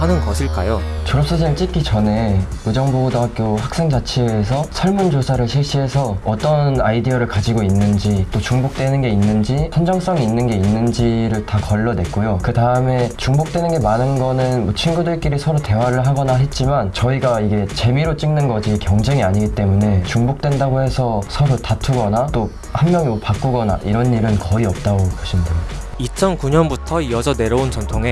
것일까요? 졸업사진을 찍기 전에 의정부고등학교 학생자치회에서 설문조사를 실시해서 어떤 아이디어를 가지고 있는지, 또 중복되는 게 있는지, 선정성이 있는 게 있는지를 다 걸러냈고요. 그 다음에 중복되는 게 많은 거는 뭐 친구들끼리 서로 대화를 하거나 했지만, 저희가 이게 재미로 찍는 거지 경쟁이 아니기 때문에 중복된다고 해서 서로 다투거나 또 한 명이 뭐 바꾸거나 이런 일은 거의 없다고 보시면 됩니다. 2009년부터 이어져 내려온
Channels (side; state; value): both; identical; correlation 1.00